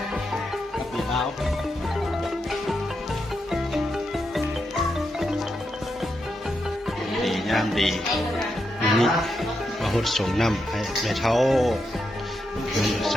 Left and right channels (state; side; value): normal; both; correlation 0.84